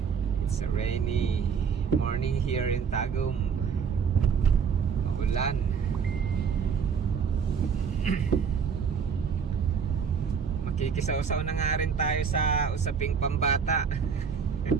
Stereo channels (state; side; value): quieter; left; 6.5 dB